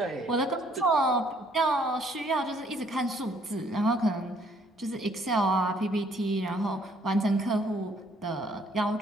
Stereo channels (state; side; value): normal; both; correlation 0.64